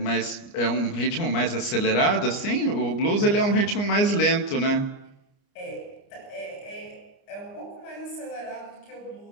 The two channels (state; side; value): late; right; 29 ms